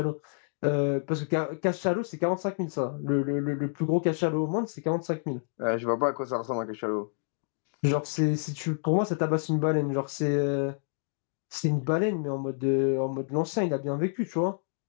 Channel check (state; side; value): silent; right; 59 dB below the other